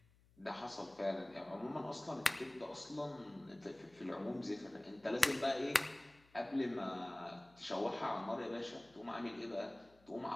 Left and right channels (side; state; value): left; noise; hum, 29 dB below the sound